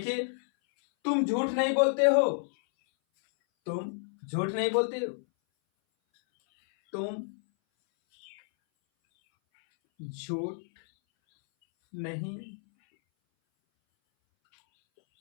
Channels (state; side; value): silent; right; 58 dB below the other